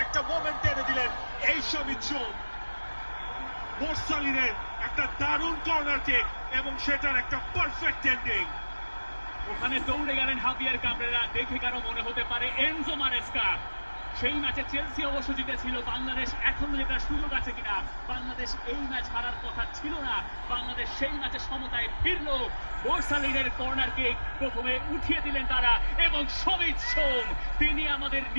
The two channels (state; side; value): inverted; both; correlation -1.00